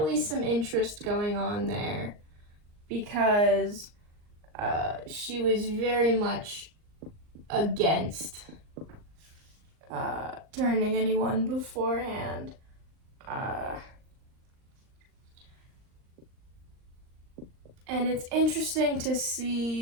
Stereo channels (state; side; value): late; left; 39 ms